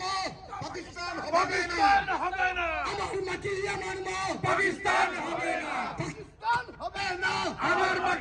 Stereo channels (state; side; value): identical; both; correlation 1.00